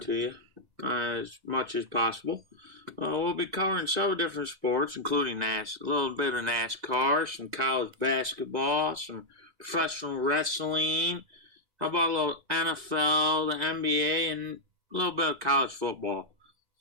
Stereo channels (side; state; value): left; late; 2.0 ms